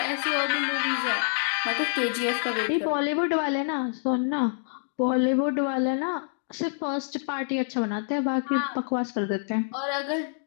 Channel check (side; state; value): right; silent; digital silence